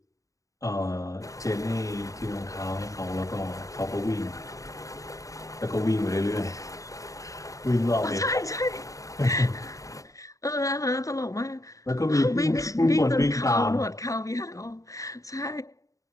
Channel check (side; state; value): right; late; 0.16 ms